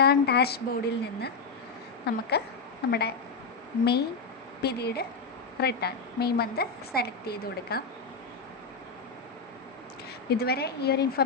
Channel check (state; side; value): quieter; right; 4.4 dB